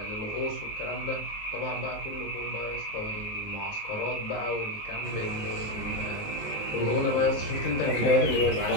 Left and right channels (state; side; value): late; right; 19 ms